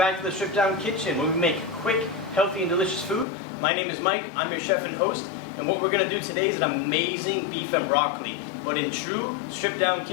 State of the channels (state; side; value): drops out; right; at 3.2 s